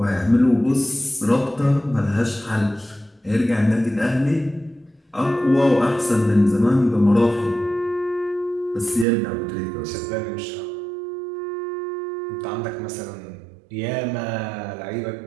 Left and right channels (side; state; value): left; drops out; at 9.1 s